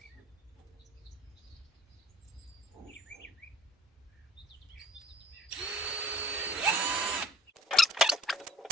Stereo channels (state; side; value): normal; both; correlation 0.51